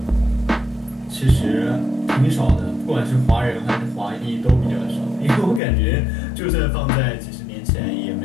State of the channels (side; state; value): right; drops out; at 5.6 s